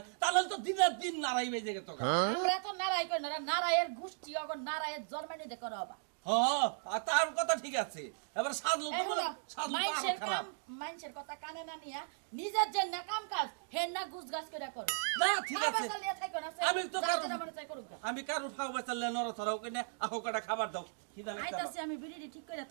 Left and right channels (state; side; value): silent; left; digital silence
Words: তাহলে তো দিনের দিন নারাই বেজে গেত আমরা তো নারাই কই না নারায়ের গোষ্ঠী অগর নারায়ের জন্মানি দেখো রবা আর তার কথা ঠিক আছে এবার সাজলু তো বলে সাজলু মাইনসের তো কাম খারাপ মাইনসের কথা কানে না নিয়া নিজের যে না কাম কাজ হেন না গুজগাছ করে করো না ঠিক আছে আমি তো আমি কারো ফাও বাঁচালে নড়া ছড়াও কিনে আহো কটা খাবার দাও কি জানি আইতাছি আমি বিড়ি ঠিক করে